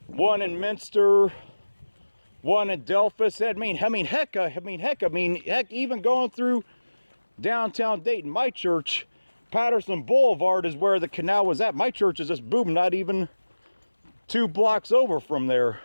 one in Minster, one in Delphus. Heck, even going through downtown Dayton, my church, Patterson Boulevard, is where the canal was at. My church is just boom, not even 2 blocks over from there.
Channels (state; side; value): inverted; both; correlation -1.00